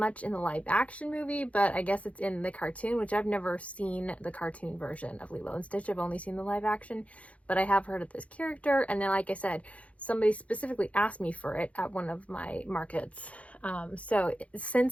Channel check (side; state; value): right; late; 0.065 ms